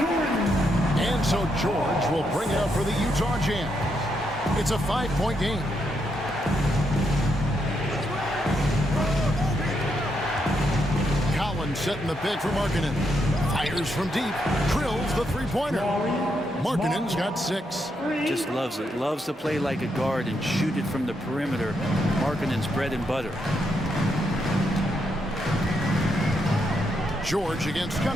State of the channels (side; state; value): both; normal; correlation 0.79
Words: And so George will bring it up for the Utah Jazz. It's a 5-point game. Collins setting the pick for Markkanen. Fires from deep. Drills the three-pointer. Markkanen's got 6. Just loves it. Loves to play like a guard and shoot it from the perimeter. Markkanen's bread and butter. George against